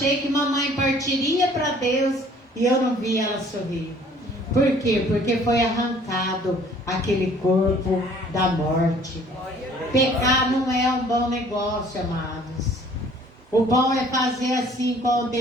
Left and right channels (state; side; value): normal; both; correlation 0.55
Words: que mamãe partiria para Deus e eu não vi ela sorrir. Por quê? Porque foi arrancado aquele corpo da morte. Pecar não é um bom negócio, amados. O bom é fazer assim com o